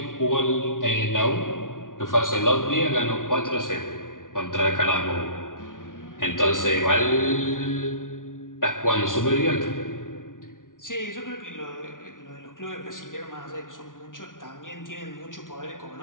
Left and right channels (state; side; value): late; right; 0.88 ms